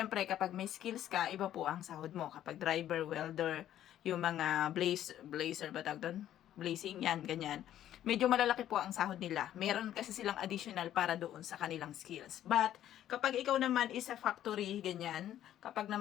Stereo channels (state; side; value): quieter; right; 11.7 dB